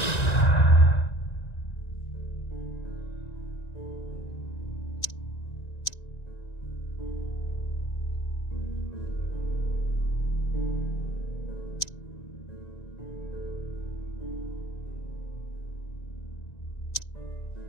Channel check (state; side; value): late; right; 1.9 ms